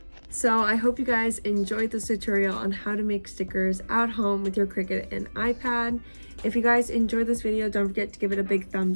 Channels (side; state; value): both; inverted; correlation -1.00